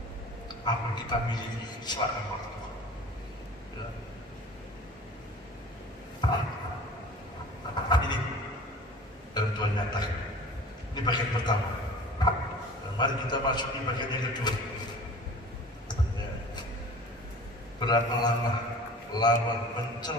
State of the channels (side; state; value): both; normal; correlation 0.43